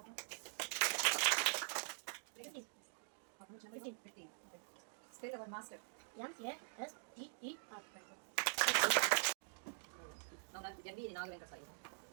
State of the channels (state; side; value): silent; left; digital silence